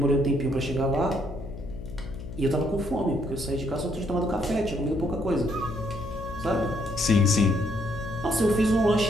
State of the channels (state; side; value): noise; left; hum, 11 dB below the sound